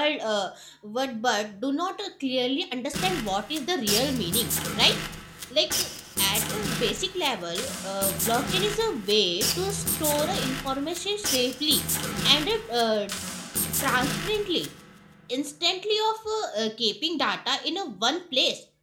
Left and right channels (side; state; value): both; identical; correlation 1.00